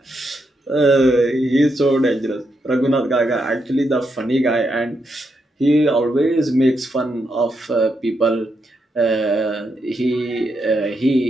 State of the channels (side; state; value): both; normal; correlation 0.81